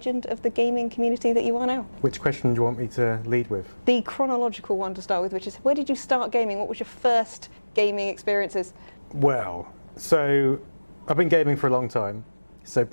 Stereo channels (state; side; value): inverted; both; correlation -1.00